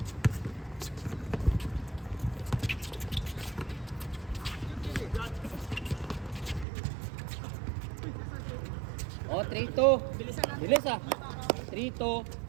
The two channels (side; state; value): left; drops out; at 6.7 s